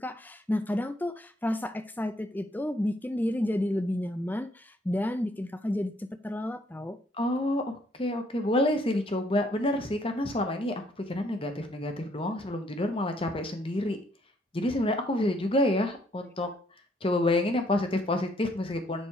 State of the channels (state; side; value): normal; both; correlation 0.68